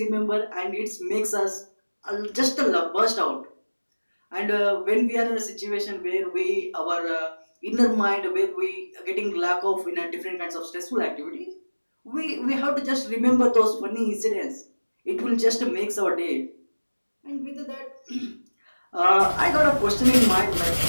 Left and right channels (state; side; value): inverted; both; correlation -1.00